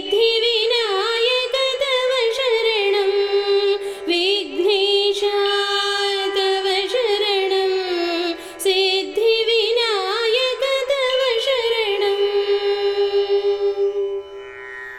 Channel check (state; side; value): identical; both; correlation 1.00